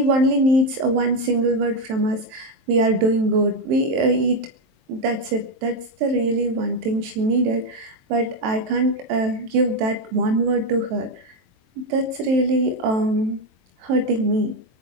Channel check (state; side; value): late; left; 23 ms